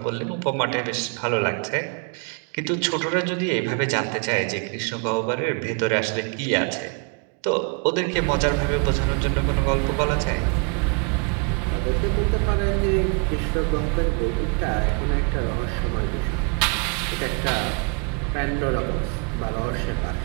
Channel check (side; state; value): left; quieter; 36.1 dB